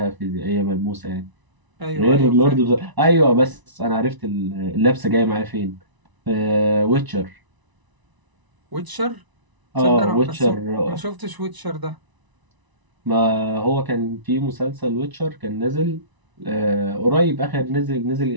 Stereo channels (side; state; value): left; late; 1.0 ms